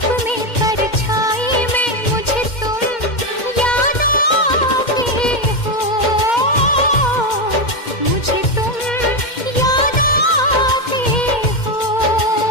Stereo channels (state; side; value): late; right; 2.1 ms